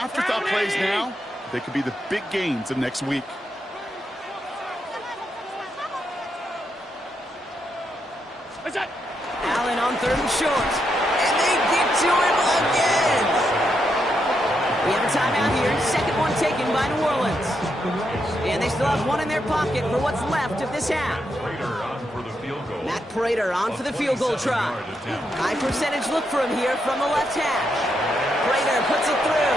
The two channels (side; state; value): both; normal; correlation 0.81